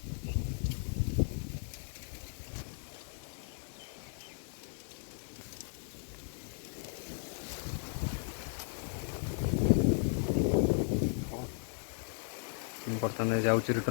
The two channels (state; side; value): silent; right; digital silence